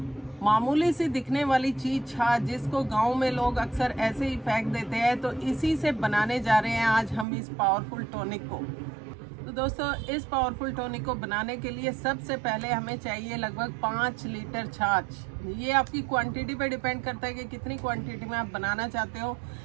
मामूली सी दिखने वाली चीज छाछ, जिसको गांव में लोग अक्सर ऐसे ही फेंक देते हैं, तो इसी से बनाने जा रहे हैं आज हम इस पावरफुल टॉनिक को। तो दोस्तों, इस पावरफुल टॉनिक को बनाने के लिए सबसे पहले हमें चाहिए लगभग 5 लीटर छाछ। ये आपकी क्वांटिटी पे डिपेंड करता है कि कितनी क्वांटिटी में आप बनाना चाहते हो।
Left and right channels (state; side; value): drops out; left; at 7.2 s